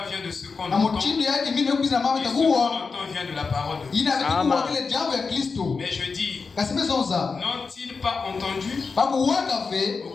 vient de ce qu'on entend, et ce qu'on entend vient de la parole de Dieu. Mais je dis, n'ont-ils pas entendu? Au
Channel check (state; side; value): quieter; right; 4.8 dB